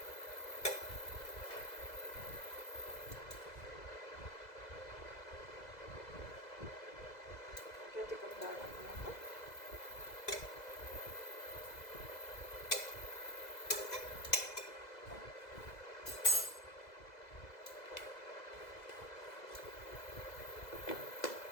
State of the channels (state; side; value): late; right; 2.0 ms